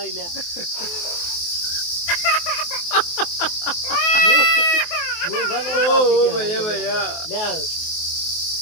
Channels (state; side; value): late; right; 23 ms